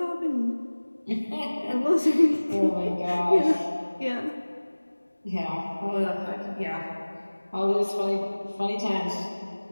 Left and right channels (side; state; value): both; inverted; correlation -1.00